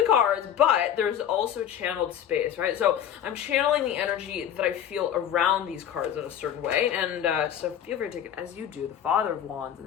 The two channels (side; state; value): right; quieter; 9.8 dB